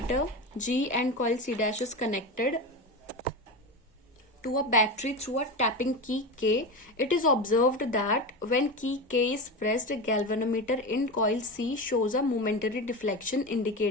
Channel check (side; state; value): both; normal; correlation 0.22